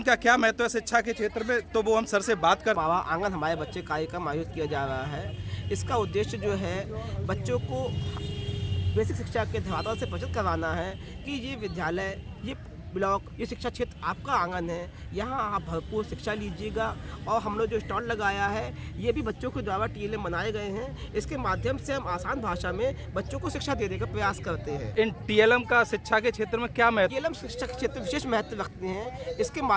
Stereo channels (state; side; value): identical; both; correlation 1.00